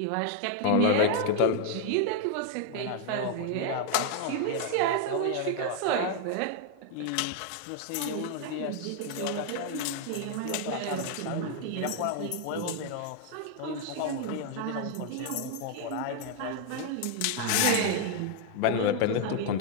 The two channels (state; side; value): different; both; correlation 0.00